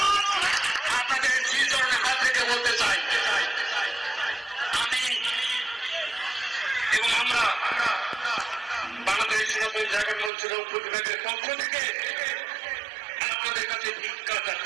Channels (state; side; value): drops out; left; at 10.3 s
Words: আপনাদের শ্রীচরণের হাত থেকে বলতে চাই, আমি এবং আমরা বাংলাদেশ সনাতন জাগরণ মঞ্চ রংপুর বিভাগের পক্ষ থেকে আপনাদের কাছে ভিক্ষা